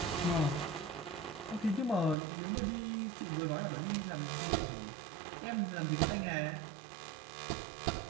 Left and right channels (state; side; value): drops out; left; at 2.1 s